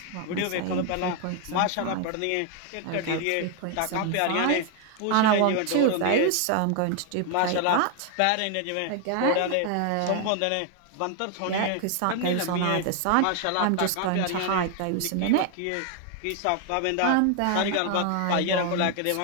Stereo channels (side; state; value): both; different; correlation 0.00